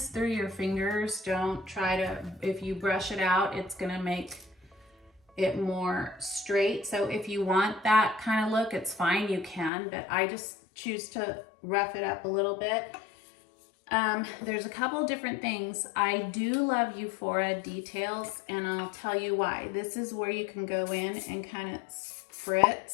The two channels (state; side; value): drops out; right; at 9.7 s